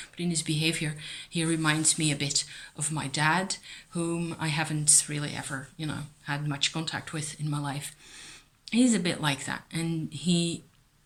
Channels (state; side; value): identical; both; correlation 1.00